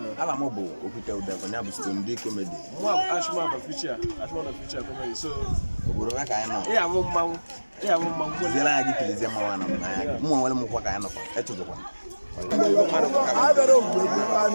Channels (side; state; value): both; inverted; correlation -1.00